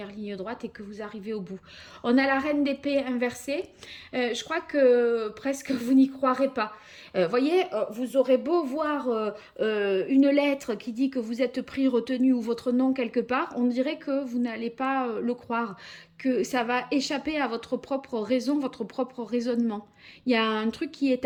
ligne droite et que vous arrivez au bout. On a la reine d'épée inversée. Je crois que presque vous n'y croirez pas. Voyez, vous aurez beau voir une lettre qui dit que vous êtes pris, retenu ou votre nom quelque part, on dirait que vous n'allez pas le croire, que ça va échapper à votre propre raison, votre propre raisonnement. Il y a un truc qui est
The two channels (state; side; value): identical; both; correlation 1.00